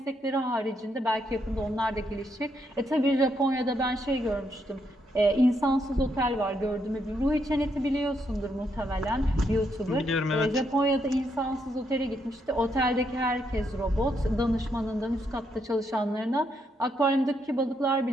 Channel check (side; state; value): both; normal; correlation 0.77